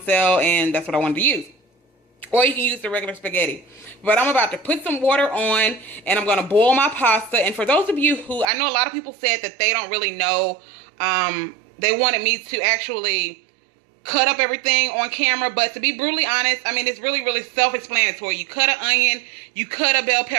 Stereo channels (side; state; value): left; drops out; at 8.5 s